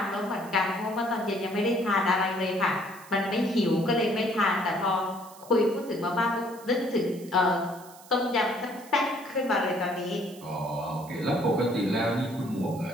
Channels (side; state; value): right; noise; hiss, 21 dB below the sound